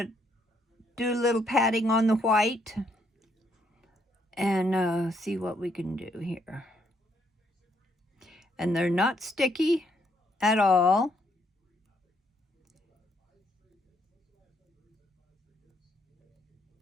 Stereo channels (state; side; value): normal; both; correlation 0.72